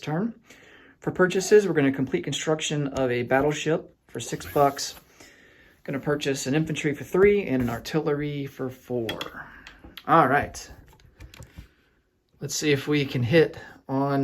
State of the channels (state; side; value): identical; both; correlation 1.00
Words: For purchases, we're going to complete construction of a battleship for $6. Going to purchase an infantry for 3 and an artillery for 4. All right. Let's see if we can hit